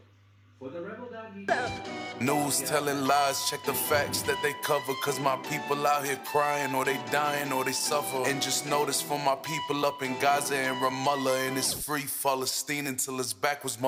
For the Rebel.media... News telling lies, check the facts that they cover. Cause my people out here crying, or they dying, or they suffer. And just notice for my people up in Gaza and Ramallah, and it's free Palestine until it's backwards,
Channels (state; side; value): identical; both; correlation 1.00